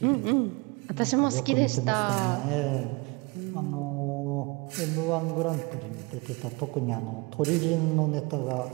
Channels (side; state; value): left; quieter; 27.4 dB